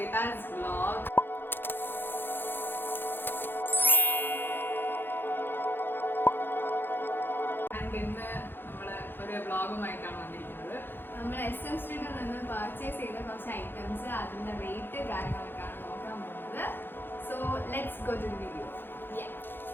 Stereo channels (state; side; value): late; right; 0.10 ms